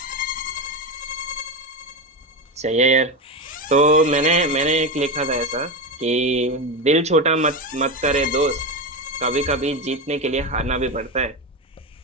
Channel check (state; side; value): normal; both; correlation 0.16